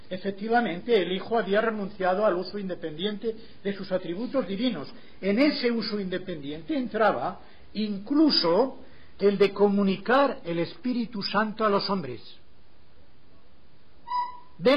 efectivamente, el Hijo había renunciado al uso independiente de sus atributos divinos. En ese uso independiente entraba incluso el de comunicar el Espíritu Santo a los hombres.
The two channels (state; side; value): identical; both; correlation 1.00